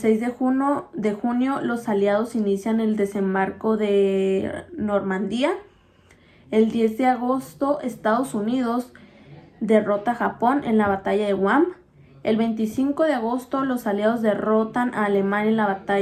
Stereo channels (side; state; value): both; identical; correlation 1.00